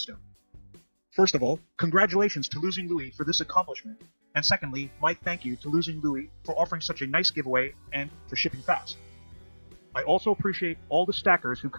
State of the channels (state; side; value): inverted; both; correlation -1.00